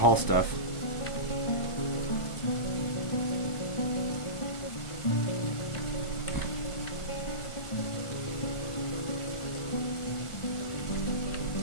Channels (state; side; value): late; right; 1.4 ms